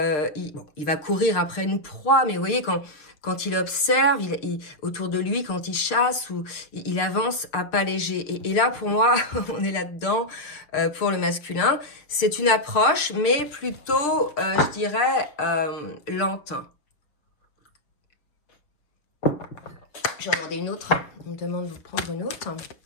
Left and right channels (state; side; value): late; right; 6.7 ms